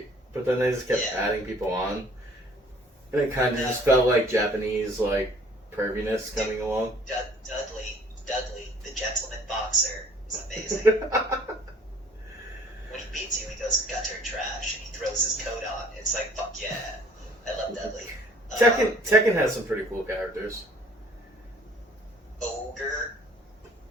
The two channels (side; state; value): both; normal; correlation 0.55